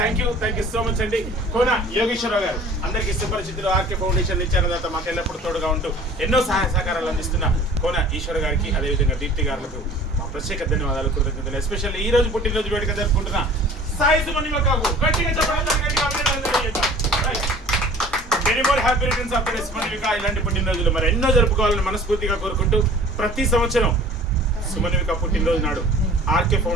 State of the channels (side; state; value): both; normal; correlation 0.47